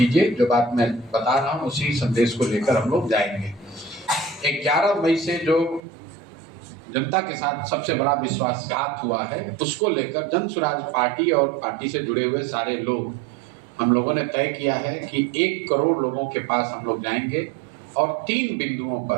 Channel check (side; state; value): left; drops out; at 5.8 s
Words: जो बात मैं बता रहा हूँ उसी संदेश को लेकर हम लोग जाएंगे। 11 मई से जो जनता के साथ सबसे बड़ा विश्वासघात हुआ है, उसको लेकर जन स्वराज पार्टी और पार्टी से जुड़े हुए सारे लोग, हम लोगों ने तय किया है कि 1 करोड़ लोगों के पास हम लोग जाएंगे और 3 बिंदुओं